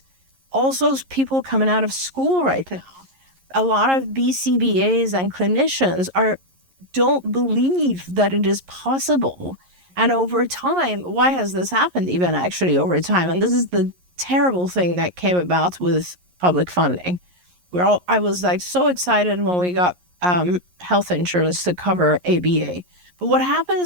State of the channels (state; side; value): late; left; 11 ms